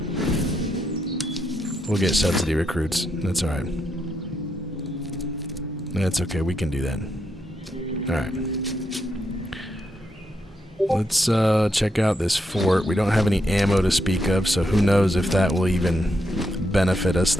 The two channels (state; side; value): normal; both; correlation 0.81